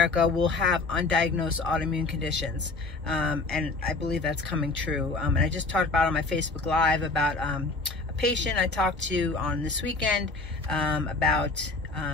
will have undiagnosed autoimmune conditions. And I believe that's coming true. And I just talked about on my Facebook Live about a patient I talked to on this weekend about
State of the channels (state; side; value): quieter; right; 3.6 dB